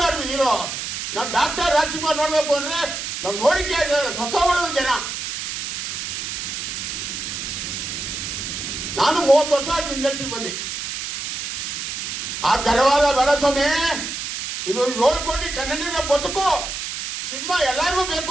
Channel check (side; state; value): right; noise; hiss, 5 dB below the sound